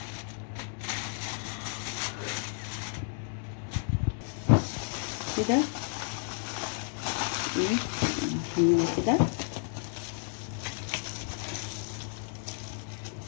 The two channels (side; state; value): right; silent; 57 dB below the other